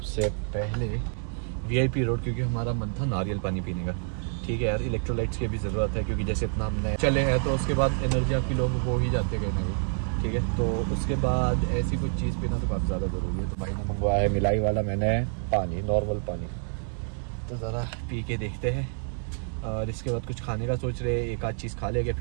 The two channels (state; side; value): silent; left; 58 dB below the other